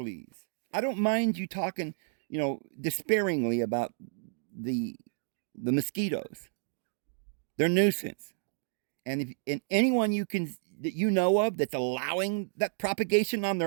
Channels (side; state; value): left; silent; digital silence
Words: I don't mind you talking, despairingly about the mosquitoes. They're a nuisance. And anyone that you know of that's allowing that propagation on